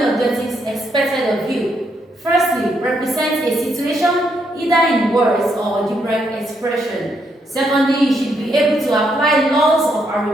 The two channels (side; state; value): both; normal; correlation 0.76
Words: objectives expected of you. Firstly, represent a situation either in words or algebraic expression. Secondly, you should be able to apply laws of